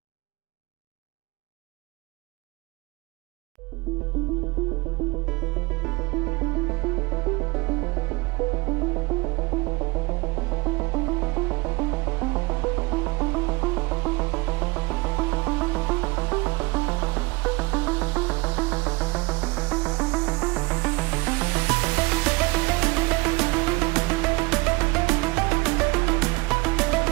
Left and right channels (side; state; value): left; quieter; 24.5 dB